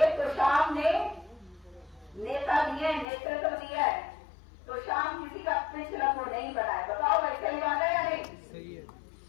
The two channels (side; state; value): right; drops out; at 3.1 s